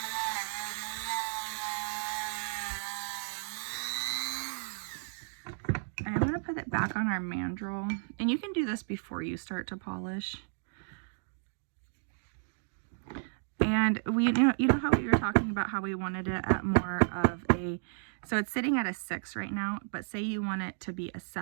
I'm going to put it back on our mandrel, and you can do this before you start to polish. And you know how we were talking about how we wanted it at more of a, so it's sitting at a 6 right now, but say you want it to be a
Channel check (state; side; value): silent; left; digital silence